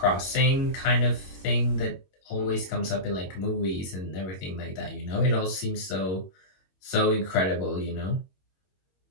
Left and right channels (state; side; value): late; right; 21 ms